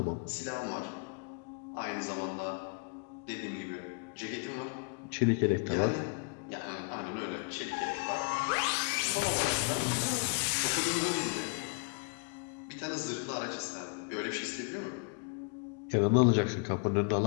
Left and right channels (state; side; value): quieter; right; 33.8 dB